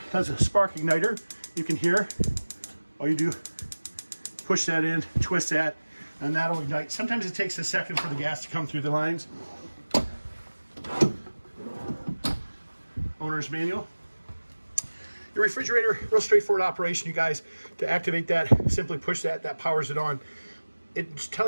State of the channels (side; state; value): both; inverted; correlation -1.00